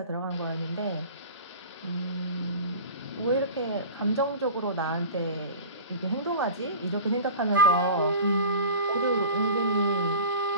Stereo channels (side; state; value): both; inverted; correlation -0.36